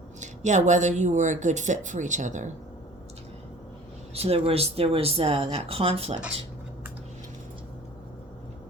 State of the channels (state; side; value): normal; both; correlation 0.46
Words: Yeah, whether you were a good fit for each other. So there was that conflict.